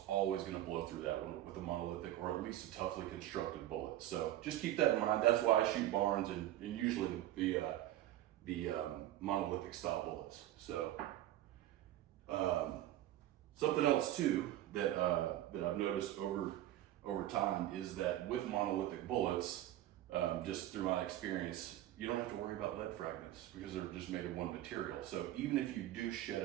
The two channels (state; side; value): quieter; left; 13.8 dB